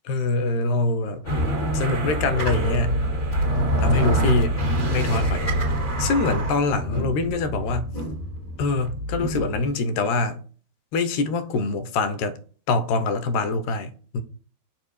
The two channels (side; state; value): right; late; 13 ms